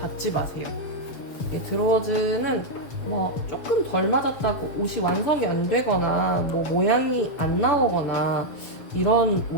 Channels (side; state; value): right; late; 7.0 ms